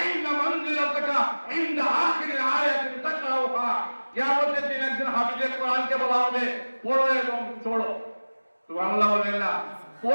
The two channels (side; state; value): both; inverted; correlation -1.00